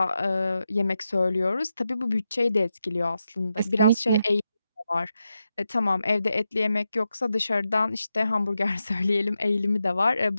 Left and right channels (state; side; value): inverted; both; correlation -0.87